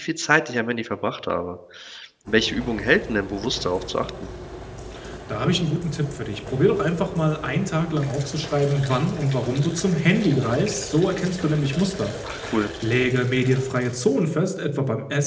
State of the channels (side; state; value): both; identical; correlation 1.00